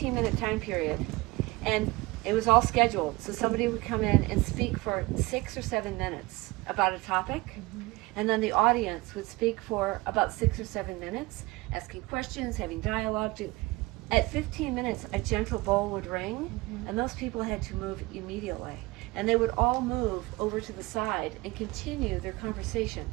time period, and it was all scheduled. So somebody would come in and speak for 6 or 7 minutes about a topic, and then the audience would speak for about 6 or 7 minutes, asking questions, having dialogue. At 15 minutes, a gentle bell would ring, and those people had to move immediately. And they would all move over to the side and continue their conversation.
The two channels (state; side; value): quieter; left; 22.1 dB